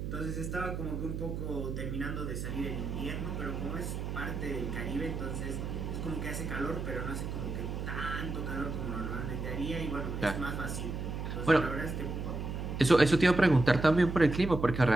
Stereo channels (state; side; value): noise; right; hum, 4 dB below the sound